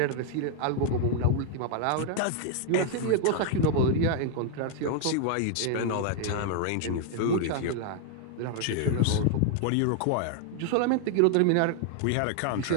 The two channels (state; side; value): different; both; correlation 0.00